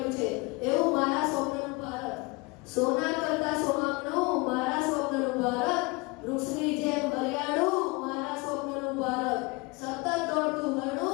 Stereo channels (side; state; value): right; quieter; 26.2 dB